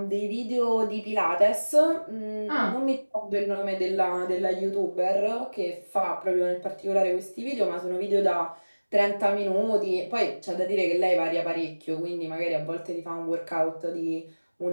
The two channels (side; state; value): both; inverted; correlation -1.00